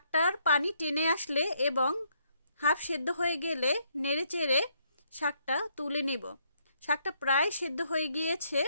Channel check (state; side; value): inverted; both; correlation -0.72